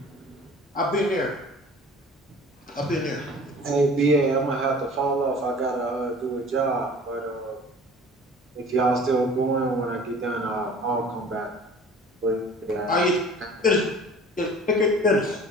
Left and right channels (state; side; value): normal; both; correlation 0.46